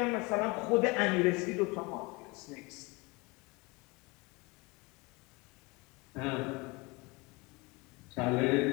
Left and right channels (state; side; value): quieter; right; 25.7 dB